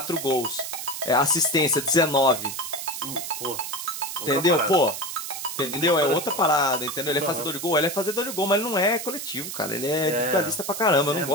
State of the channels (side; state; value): right; noise; hiss, 7 dB below the sound